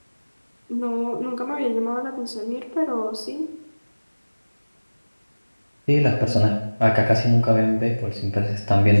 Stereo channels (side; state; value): both; inverted; correlation -1.00